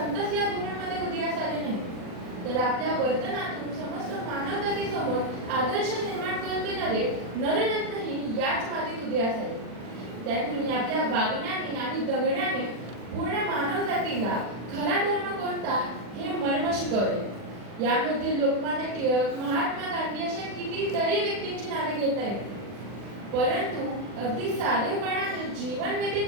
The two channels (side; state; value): left; late; 40 ms